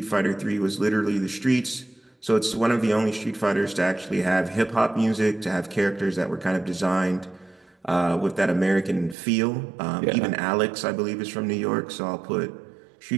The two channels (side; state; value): left; drops out; at 9.2 s